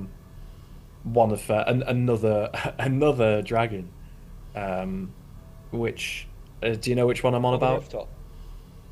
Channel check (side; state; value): both; identical; correlation 1.00